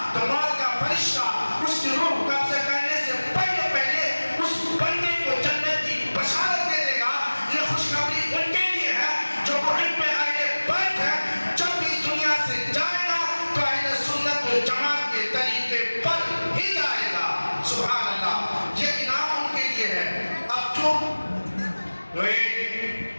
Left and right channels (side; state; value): both; inverted; correlation -1.00